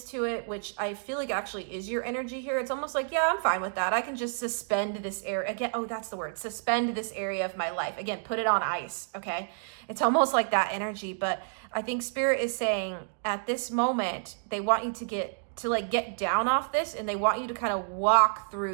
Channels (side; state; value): left; silent; digital silence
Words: to it, which I feel like actually is your energy here. It's almost like, yeah, I'm fine with that. I can just suspend this area again. Oh, that's the word. Suspend this area of my life. Again, put it on ice. Okay. It's almost like that energy, but I think Spirit is saying at this moment, they want you to get down off this, and they want you to kind of walk